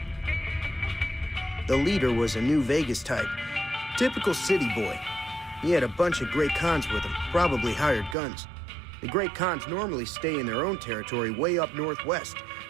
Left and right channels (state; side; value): drops out; left; at 8.2 s